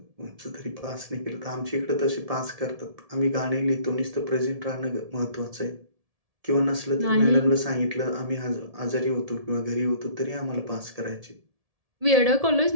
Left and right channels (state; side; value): late; left; 1.7 ms